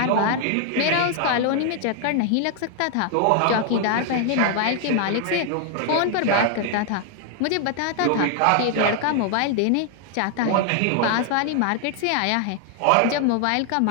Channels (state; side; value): different; both; correlation 0.00